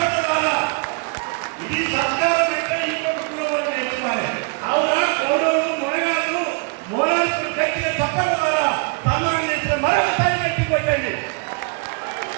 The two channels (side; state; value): left; quieter; 33.0 dB